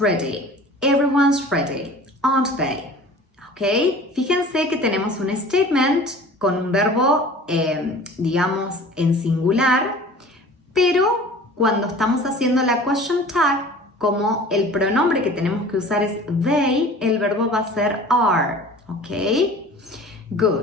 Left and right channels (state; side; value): normal; both; correlation 0.43